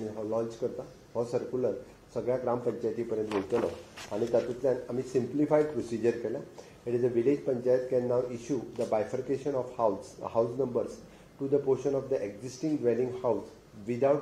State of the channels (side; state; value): both; identical; correlation 1.00